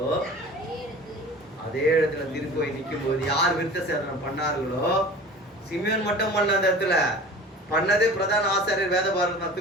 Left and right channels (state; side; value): normal; both; correlation 0.40